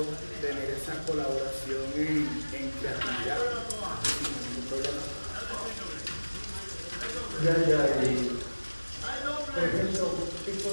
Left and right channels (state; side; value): inverted; both; correlation -1.00